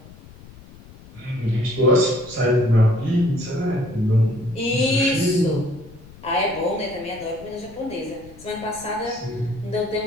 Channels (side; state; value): left; noise; rumble, 21 dB below the sound